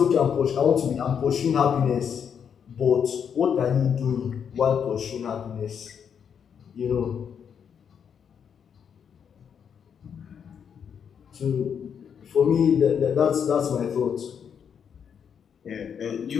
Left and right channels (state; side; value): quieter; right; 7.6 dB